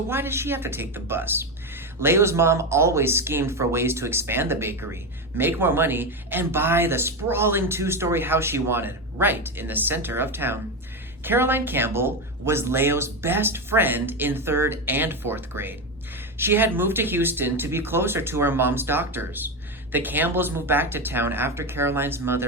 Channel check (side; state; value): both; normal; correlation 0.14